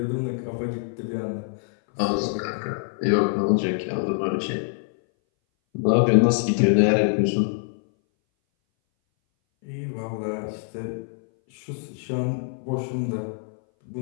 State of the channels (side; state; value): right; silent; 59 dB below the other